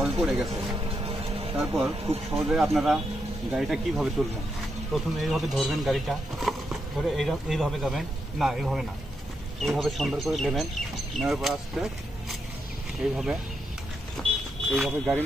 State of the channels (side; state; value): both; normal; correlation 0.82